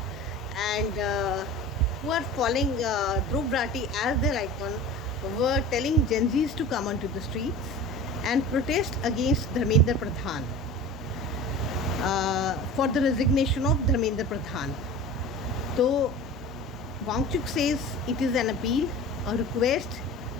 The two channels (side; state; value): both; normal; correlation 0.36